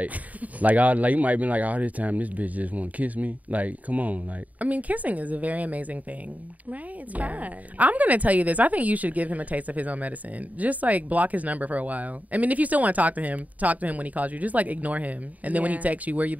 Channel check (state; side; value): late; left; 0.073 ms